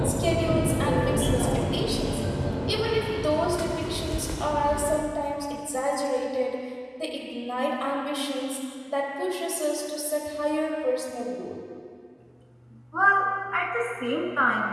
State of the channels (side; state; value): both; identical; correlation 1.00